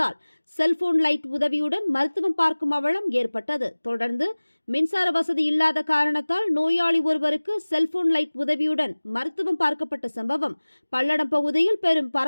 செல்போன் லைட் உதவியுடன் மருத்துவம் பார்க்கும் அவலம் ஏற்பட்டது. தொடர்ந்து மின்சார வசதி இல்லாத காரணத்தால் நோயாளி ஒருவருக்கு செல்போன் லைட் உதவியுடன் மருத்துவம் பார்க்கப்பட்ட சம்பவம் பல்லடம் பகுதியில் பெரும்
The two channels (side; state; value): both; inverted; correlation -1.00